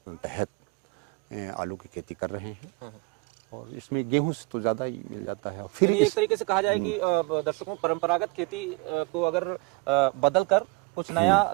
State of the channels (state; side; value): quieter; left; 26.3 dB